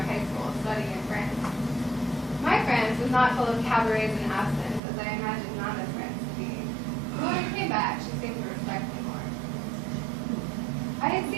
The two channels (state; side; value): drops out; left; at 4.8 s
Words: high school studying in France. My France was not full of cabarets and absinthe, as I imagined Nana's France to be. But when I came back, she seemed to respect me more. I had